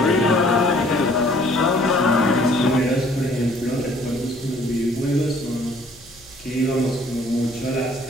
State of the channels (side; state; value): left; noise; hum, 26 dB below the sound